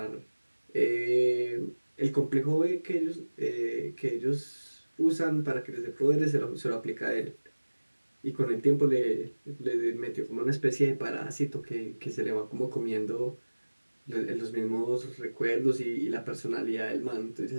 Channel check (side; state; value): both; inverted; correlation -1.00